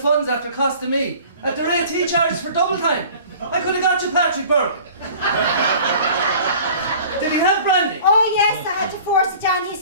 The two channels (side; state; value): both; inverted; correlation -0.46